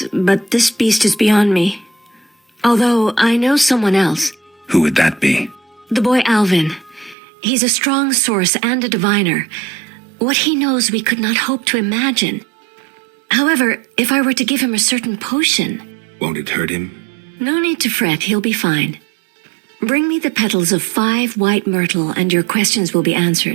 but this beast is beyond me. Although I know someone else. Who would that be? The boy Alvin. He's a strong source and a diviner. What he knows we could not hope to imagine. However, if I were to give him a certain potion... Won't it hurt him? No need to fret, he'll be fine. Bring me the petals of 5 white myrtle and your questions will be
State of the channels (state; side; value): drops out; left; at 7.2 s